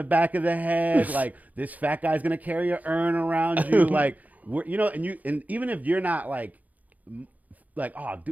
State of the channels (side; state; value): left; late; 0.077 ms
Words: back of the head. Like this fat guy's gonna carry an urn around you. Like you know, and even if you're not like, oh,